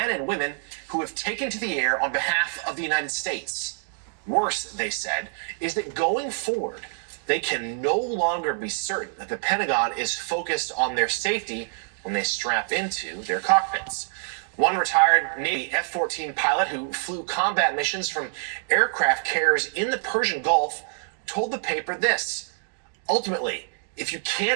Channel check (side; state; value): left; silent; digital silence